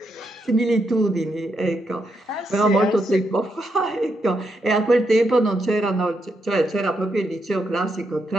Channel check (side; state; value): both; normal; correlation 0.81